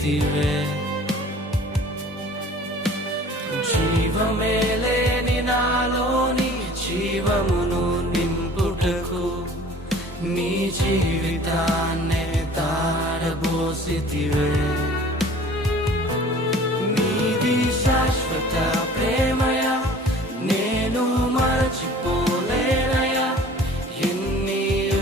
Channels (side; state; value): both; normal; correlation 0.47